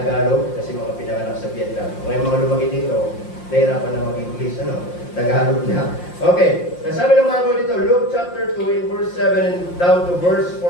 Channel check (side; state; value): right; late; 5.7 ms